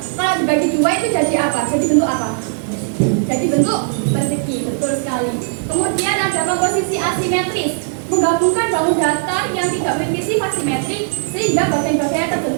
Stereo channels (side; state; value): left; silent; digital silence